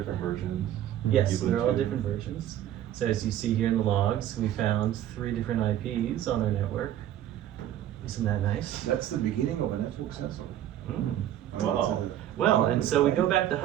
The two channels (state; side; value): quieter; left; 11.8 dB